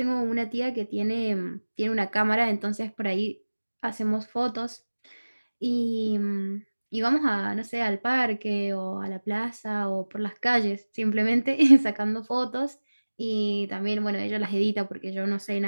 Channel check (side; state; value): both; inverted; correlation -1.00